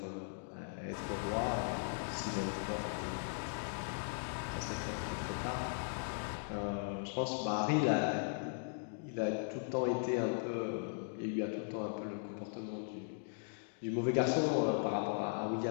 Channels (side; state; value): right; silent; digital silence